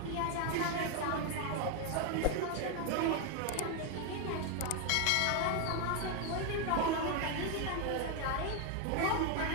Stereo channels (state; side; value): different; both; correlation 0.01